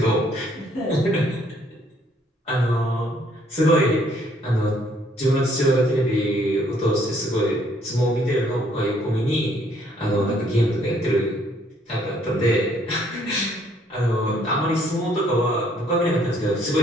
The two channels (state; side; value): normal; both; correlation 0.65